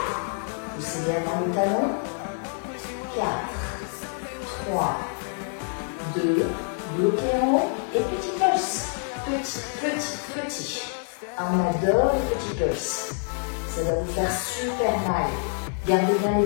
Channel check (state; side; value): silent; right; 56 dB below the other